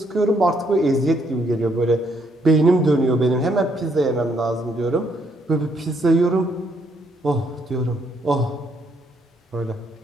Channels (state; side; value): normal; both; correlation 0.72